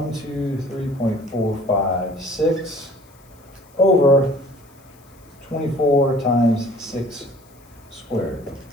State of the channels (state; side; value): noise; left; hiss, 30 dB below the sound